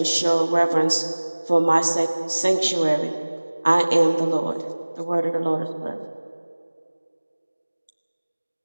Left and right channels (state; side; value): inverted; both; correlation -1.00